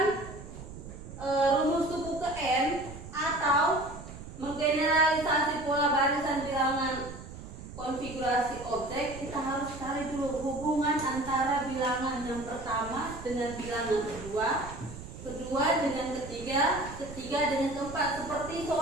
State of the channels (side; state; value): right; noise; rumble, 13 dB below the sound